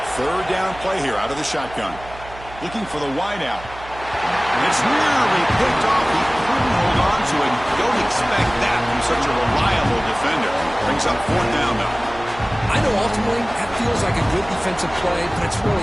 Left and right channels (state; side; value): noise; right; hum, 17 dB below the sound